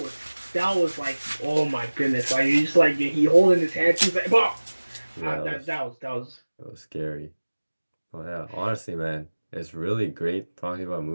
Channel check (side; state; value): both; inverted; correlation -1.00